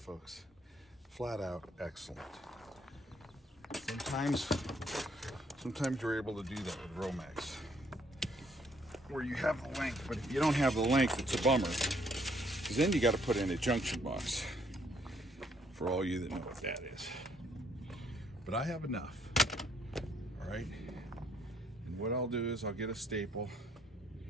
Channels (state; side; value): normal; both; correlation 0.67